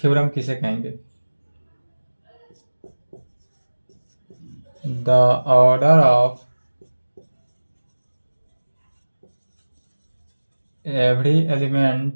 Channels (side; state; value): both; inverted; correlation -1.00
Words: किसे कहेंगे, the order of every